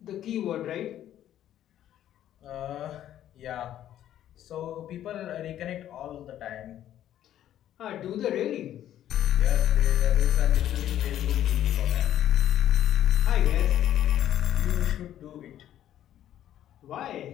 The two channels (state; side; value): quieter; right; 11.7 dB